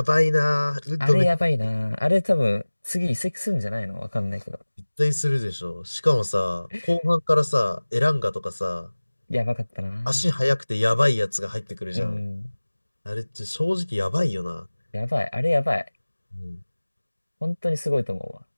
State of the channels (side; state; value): both; inverted; correlation -1.00